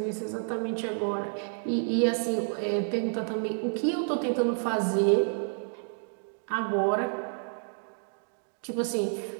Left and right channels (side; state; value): left; silent; digital silence